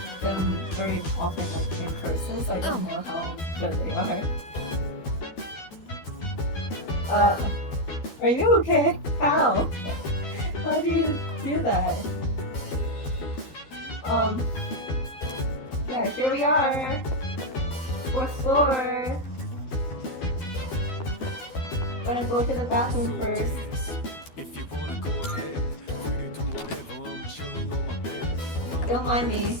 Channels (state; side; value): late; right; 12 ms